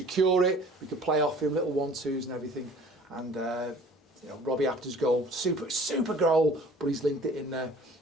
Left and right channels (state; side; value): normal; both; correlation 0.50